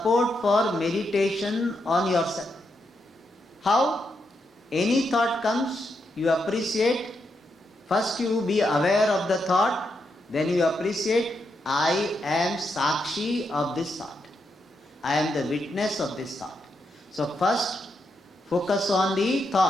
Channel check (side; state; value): both; normal; correlation 0.82